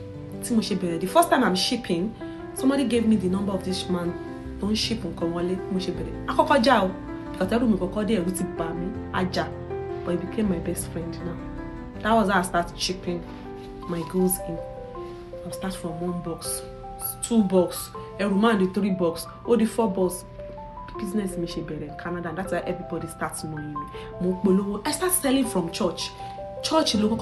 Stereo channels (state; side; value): identical; both; correlation 1.00